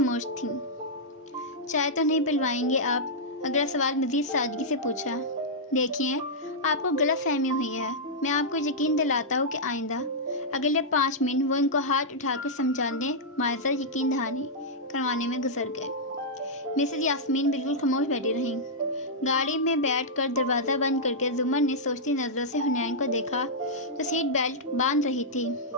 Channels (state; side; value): normal; both; correlation -0.09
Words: تھیں۔ چائے تو نہیں پلوائیں گے آپ؟ اگلا سوال مزید سادگی سے پوچھا۔ دیکھیے، آپ کو غلط فہمی ہوئی ہے۔ میں آپ کو یقین دلاتا ہوں کہ آئندہ اگلے 5 منٹ وہ ان کو ہاتھ اٹھا کر سمجھانے، معذرت یقین دہانی کروانے میں گزر گئے۔ مسز یاسمین بالکل خاموش بیٹھی رہیں۔ گاڑی میں بیٹھ کر دروازہ بند کر کے زمر نے سوچتی نظروں سے حنین کو دیکھا جو سیٹ بیلٹ باندھ رہی تھی۔